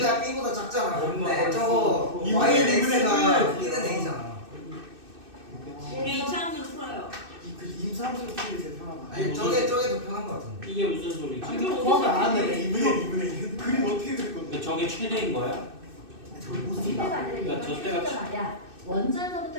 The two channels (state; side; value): late; left; 2.6 ms